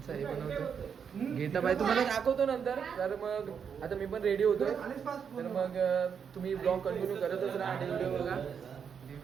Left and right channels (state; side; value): quieter; left; 7.1 dB